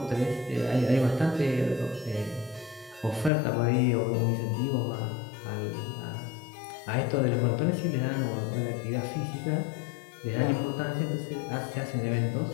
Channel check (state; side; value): drops out; right; at 3.3 s